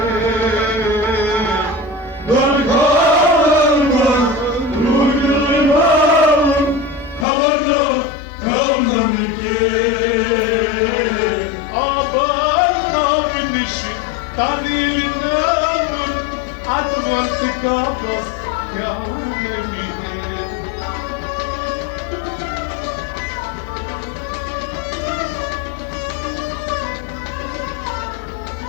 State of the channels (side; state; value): right; drops out; at 7.2 s